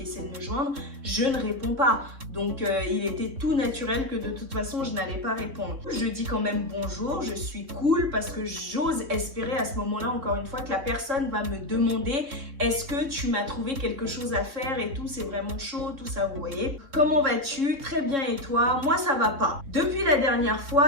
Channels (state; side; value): late; left; 3.7 ms